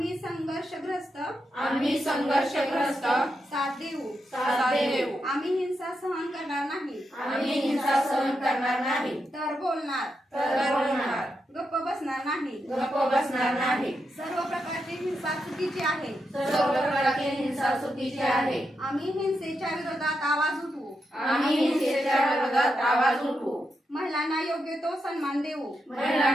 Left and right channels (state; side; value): normal; both; correlation 0.85